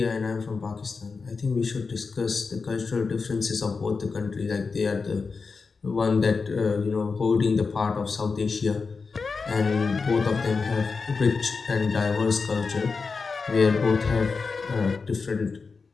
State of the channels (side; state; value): right; quieter; 4.7 dB